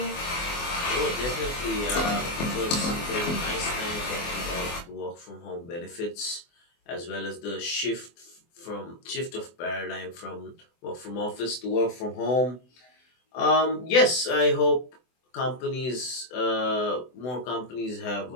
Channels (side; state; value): right; late; 24 ms